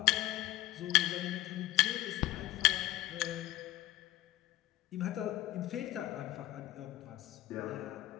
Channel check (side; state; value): right; quieter; 16.6 dB